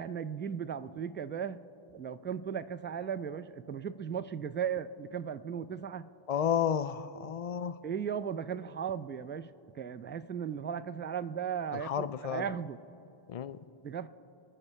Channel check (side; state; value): right; late; 1.7 ms